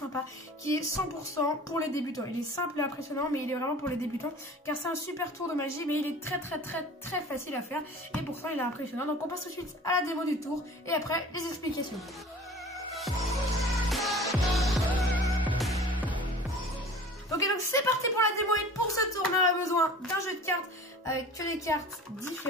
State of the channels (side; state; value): both; normal; correlation 0.42